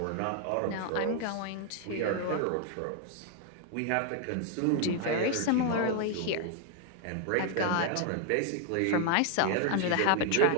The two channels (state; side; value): different; both; correlation 0.00